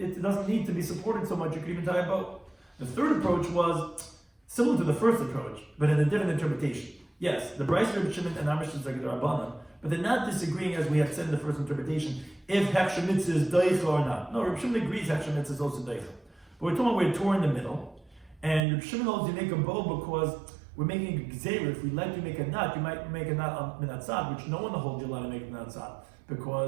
doesn't need to be supported so much. You could even tie a bow. The third approach was similar to the first approach, but in a different interpretation. Yes, the Bryce, Rabbi Shimon, and our Mishnah is like the Rabbanan, but they're not disagreeing, as we had said in the first interpretation, if Hechsher Mitzvah is Deicha or not. No, Rabbi Shimon agrees Hechsher Mitzvah is also Deicha. But we're talking about we're torn in the middle, and Rabbi Shimon holds you make a bow because we're making a gzeira. If we let you make a knot, you might make a knot on minatzad, which no one holds you allowed to make a minatzad,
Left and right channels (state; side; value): drops out; left; at 18.7 s